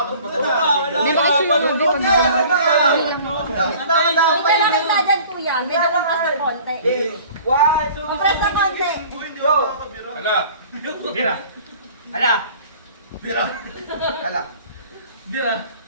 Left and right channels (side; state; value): both; inverted; correlation -0.48